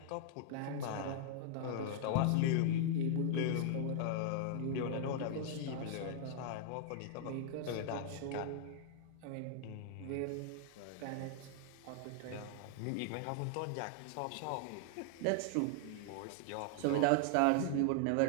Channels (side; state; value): both; different; correlation -0.01